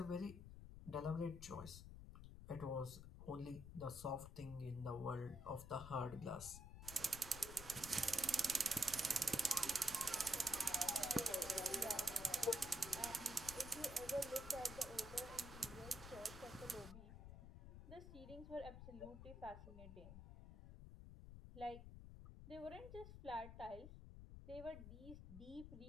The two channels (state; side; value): noise; left; rumble, 11 dB below the sound